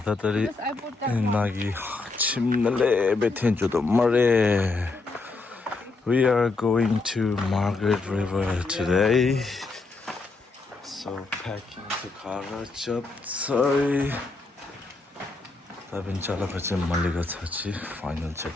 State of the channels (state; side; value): quieter; right; 3.7 dB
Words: 다들이 나기 침날래 베텐조도 말해. We are going to Margaret River today. So packing the car up. Sorry. 다빈 잘라가지 말리가 차지. 파이널